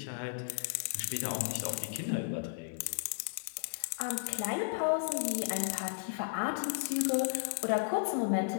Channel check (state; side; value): silent; right; digital silence